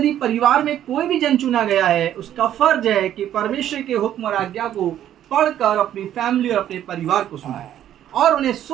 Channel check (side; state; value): left; quieter; 11.2 dB